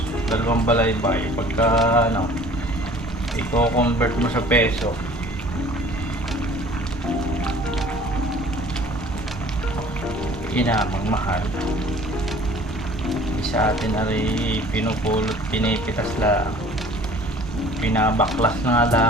Dalawang balaybay pagka i-convert mo sa peso, inamang mahal. Sa atin ay pinupulot, pinipitas lang, pinabaklas na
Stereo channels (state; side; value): normal; both; correlation 0.49